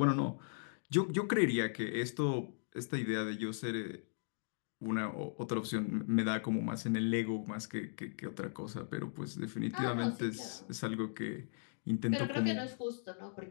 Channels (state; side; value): silent; right; digital silence